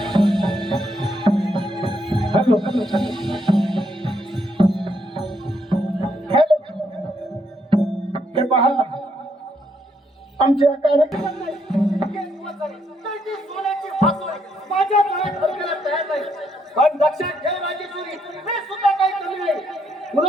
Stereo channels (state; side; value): normal; both; correlation 0.74